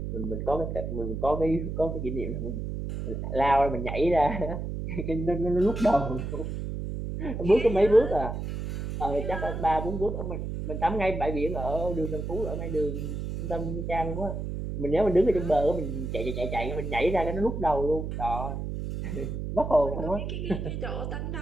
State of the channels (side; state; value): right; noise; hum, 4 dB below the sound